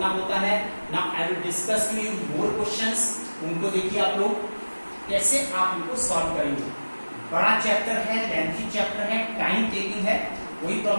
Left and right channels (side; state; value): both; inverted; correlation -1.00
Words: होता है। Now I will discuss to you more questions, उनको देखिए आप लोग कैसे आप इनको सॉल्व करेंगे। बड़ा चैप्टर है, लेंथी चैप्टर है, टाइम टेकिंग है, कोई